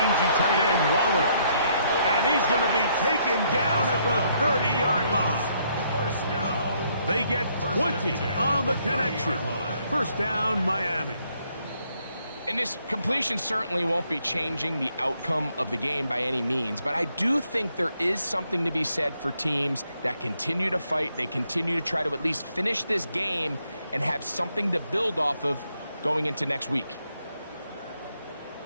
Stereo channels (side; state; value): both; inverted; correlation -0.72